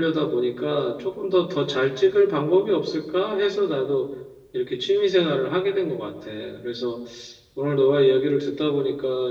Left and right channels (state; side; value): identical; both; correlation 1.00